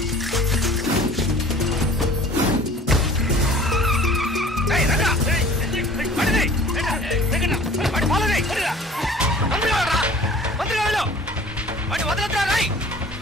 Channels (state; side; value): normal; both; correlation 0.48